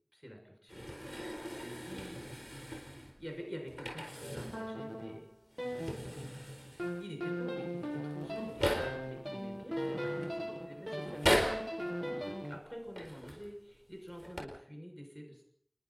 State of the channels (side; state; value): both; identical; correlation 1.00